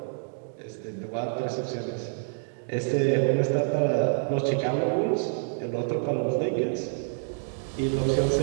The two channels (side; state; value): left; silent; digital silence